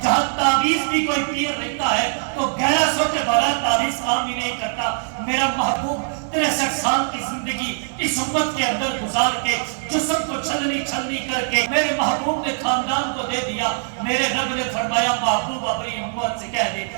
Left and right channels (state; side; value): silent; left; digital silence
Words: جہاں تعویذ بھی کوئی پیر رہتا ہے تو 1100 کے بغیر تعویذ کام بھی نہیں کرتا۔ میرا محبوب 63 سال کی زندگی اس امت کے اندر گزار کے جسم کو چھلنی چھلنی کر کے میرے محبوب نے خاندان کو دے دیا۔ میرے رب نے فرمایا محبوب اپنی امت سے کہہ دے